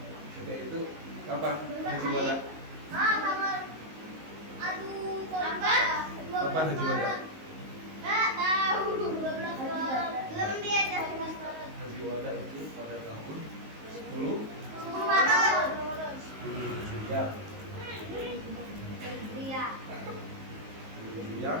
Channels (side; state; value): left; late; 19 ms